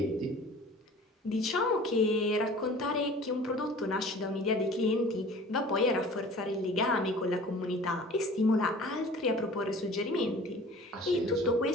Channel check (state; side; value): normal; both; correlation 0.45